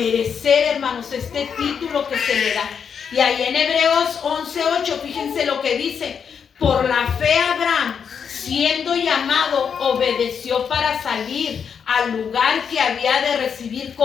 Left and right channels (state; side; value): quieter; right; 7.0 dB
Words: hermanos, este título que se le da. Y ahí en Hebreos 11:8, fíjense lo que dice: por la fe Abraham, siendo llamado, obedeció para salir al lugar que había de recibir